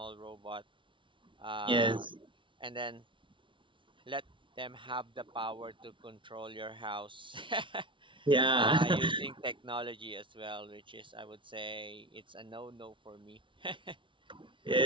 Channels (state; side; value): late; left; 0.24 ms